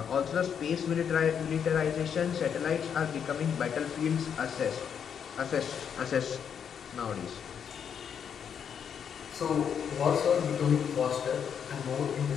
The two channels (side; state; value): right; quieter; 7.8 dB